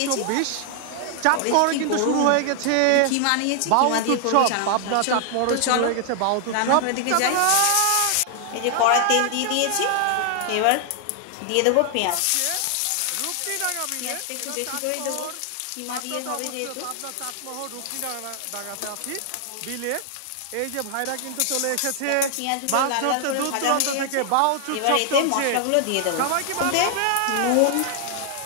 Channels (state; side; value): different; both; correlation 0.00